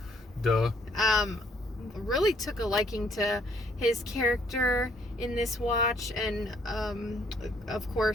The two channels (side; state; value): both; normal; correlation 0.65